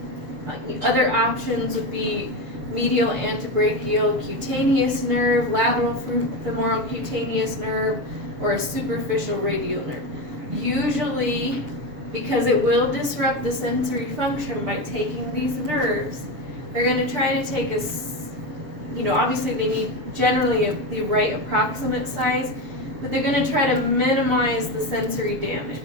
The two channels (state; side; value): late; left; 6.7 ms